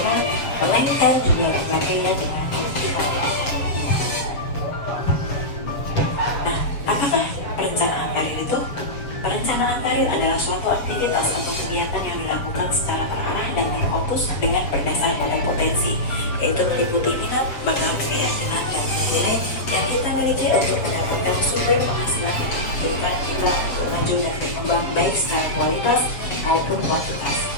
melainkan juga mengapainya dengan optimal. Nah, apakah perencanaan karir itu? Perencanaan karir adalah suatu aktivitas atau kegiatan yang dilakukan secara terarah dan terfokus dengan berdasar pada potensi, yaitu meliputi minat, bakat, keyakinan, dan nilai yang kita miliki untuk mendapatkan sumber penghasilan yang memungkinkan kita untuk maju dan berkembang baik secara kualitas maupun kuantitas.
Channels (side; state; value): right; late; 7.1 ms